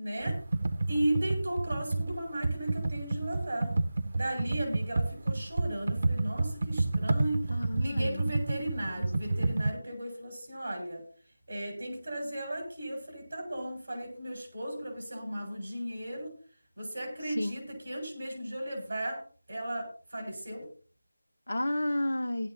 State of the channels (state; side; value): inverted; both; correlation -0.96